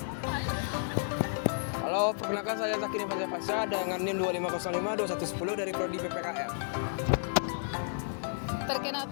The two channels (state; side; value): silent; right; digital silence